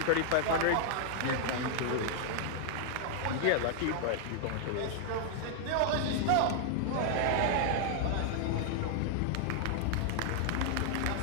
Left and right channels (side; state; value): both; different; correlation 0.00